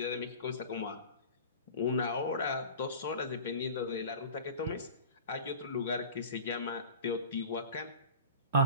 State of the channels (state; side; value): inverted; both; correlation -0.38